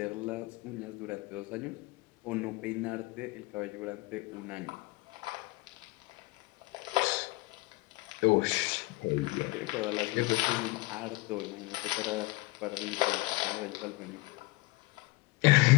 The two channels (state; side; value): quieter; right; 22.3 dB